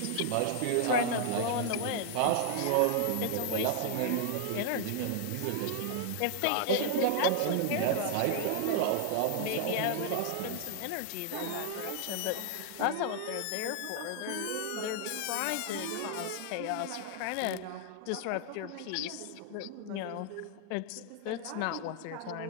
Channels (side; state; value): both; different; correlation 0.00